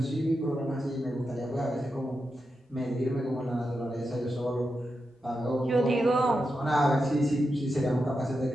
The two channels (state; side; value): normal; both; correlation 0.88